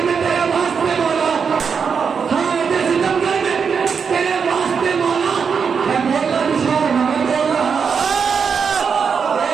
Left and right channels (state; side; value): quieter; left; 6.2 dB